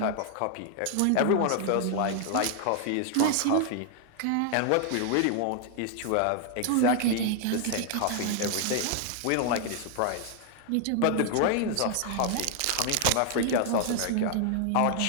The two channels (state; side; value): different; both; correlation 0.00